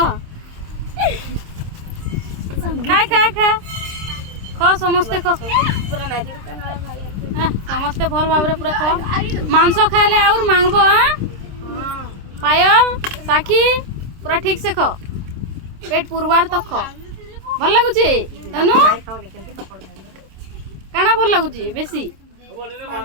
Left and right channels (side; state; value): left; late; 26 ms